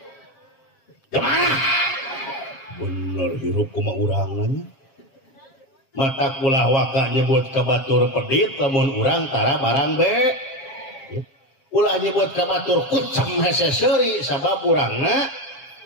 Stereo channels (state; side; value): late; right; 7.5 ms